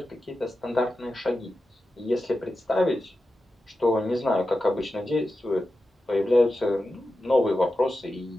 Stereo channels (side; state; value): both; normal; correlation 0.91